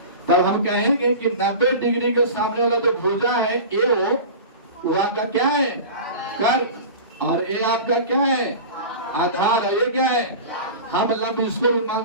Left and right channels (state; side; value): inverted; both; correlation -0.33